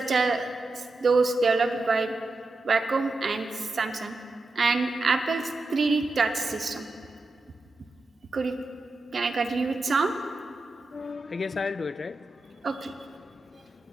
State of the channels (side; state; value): left; quieter; 3.1 dB